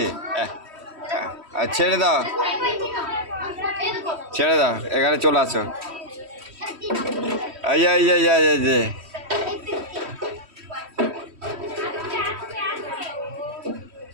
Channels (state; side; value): late; left; 3.1 ms